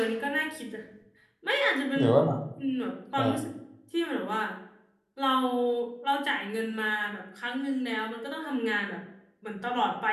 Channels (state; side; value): identical; both; correlation 1.00